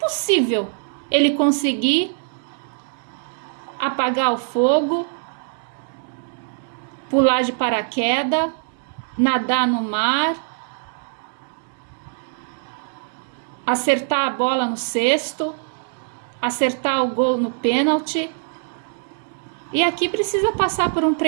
ele conseguir apagar o fogo, pular de paraquedas, nadar no mar, acertar a bola no cesto, acertar o gol no pênalti. E aqui precisa passar por um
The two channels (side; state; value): left; silent; digital silence